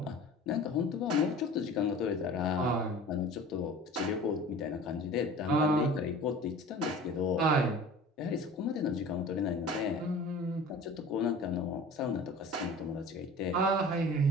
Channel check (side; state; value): both; normal; correlation 0.41